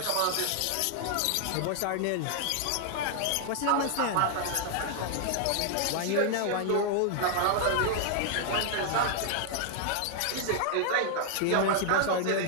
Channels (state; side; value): different; both; correlation 0.00